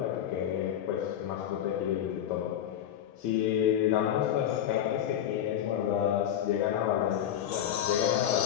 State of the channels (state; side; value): quieter; right; 10.4 dB